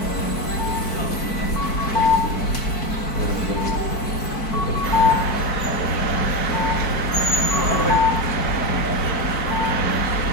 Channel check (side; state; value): right; late; 4.6 ms